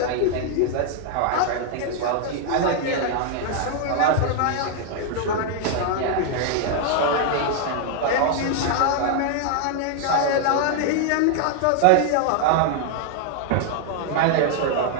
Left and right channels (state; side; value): different; both; correlation 0.00